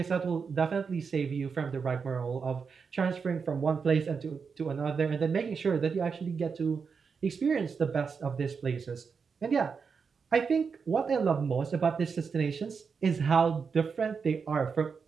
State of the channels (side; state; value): left; quieter; 5.7 dB